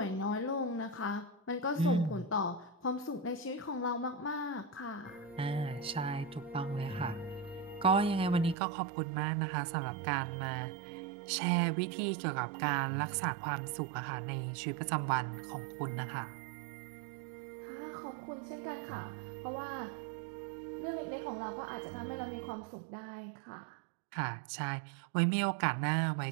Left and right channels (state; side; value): drops out; left; at 8.6 s